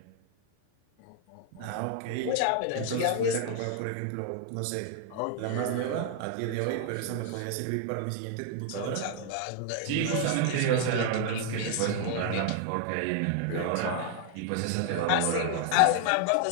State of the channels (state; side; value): different; both; correlation 0.00